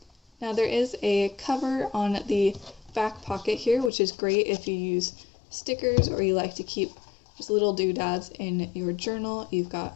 Now there is a cover on the back pocket here, which is great if you use stickers or you like to keep just little doodads in your journal. You've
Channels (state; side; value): drops out; right; at 3.9 s